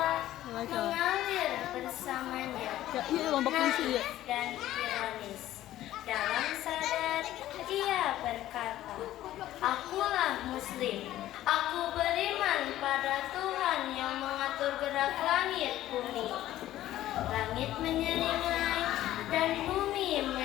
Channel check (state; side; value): quieter; right; 13.9 dB